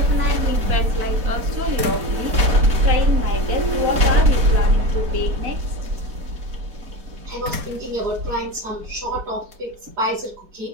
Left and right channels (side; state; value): left; late; 4.4 ms